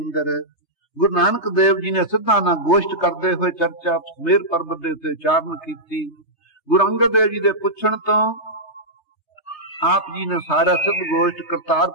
ਗੁਰੂ ਨਾਨਕ ਦੇਵ ਜੀ ਨੇ ਸਿੱਧਾ ਨਾ ਗੋਸ਼ਟ ਕਰਦੇ ਹੋਏ ਚਰਚਾ ਮੇਰ ਪਰਬਤ ਦੇ ਉੱਤੇ ਉਚਾਰਨ ਕੀਤੀ। ਗੁਰੂ ਅੰਗਦ ਦੇਵ ਜੀ ਦੇ ਪੁੱਛਣ ਤੋਂ ਆਪ ਜੀ ਨੇ ਸਾਰਾ ਸਿੱਧ ਗੋਸ਼ਟ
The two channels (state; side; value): late; right; 3.3 ms